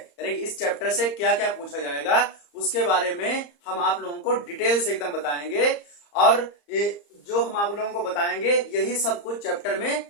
कि इस चैप्टर से क्या क्या पूछा जाएगा उसके बारे में हम आप लोगों को डिटेल से एकदम बताएंगे। और ये जो हम आप लोगों को बताएंगे यही सब कुछ चैप्टर में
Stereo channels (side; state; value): right; late; 34 ms